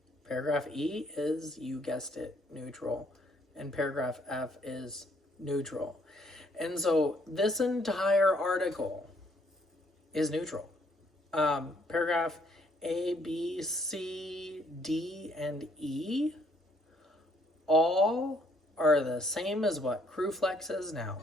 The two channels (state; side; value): normal; both; correlation 0.67